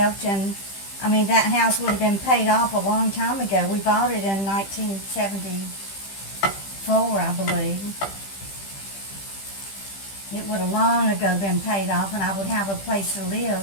and that house would have been paid off a long time ago. We bought it in 1974, I believe. It would have long ago been paid off, and I would have a place to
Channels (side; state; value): right; late; 15 ms